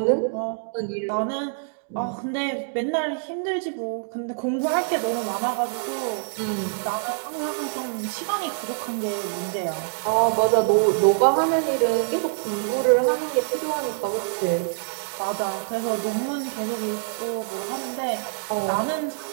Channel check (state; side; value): silent; left; digital silence